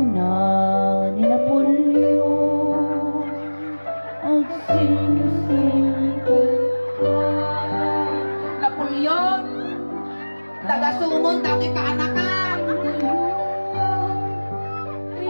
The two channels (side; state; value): both; inverted; correlation -1.00